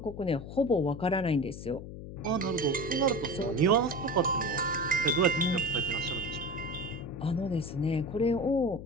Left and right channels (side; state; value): left; noise; hum, 11 dB below the sound